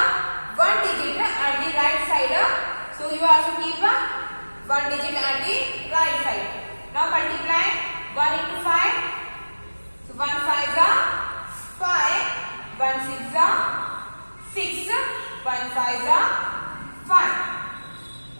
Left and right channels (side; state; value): both; inverted; correlation -1.00